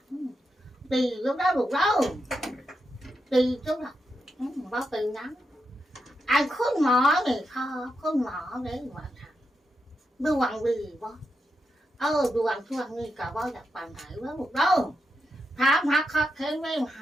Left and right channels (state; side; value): normal; both; correlation 0.85